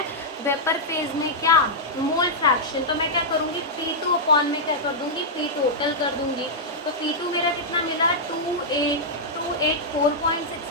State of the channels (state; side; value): normal; both; correlation -0.08